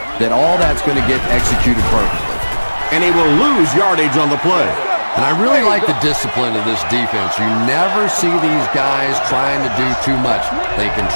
that all that's going to get executed perfectly. And he will lose yardage on the play. And I really like the discipline of this defense. You never see these guys trying to do too much. They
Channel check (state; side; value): inverted; both; correlation -1.00